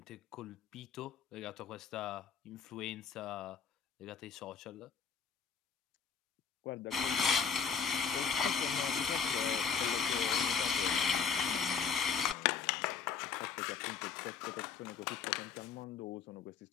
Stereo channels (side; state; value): right; quieter; 6.5 dB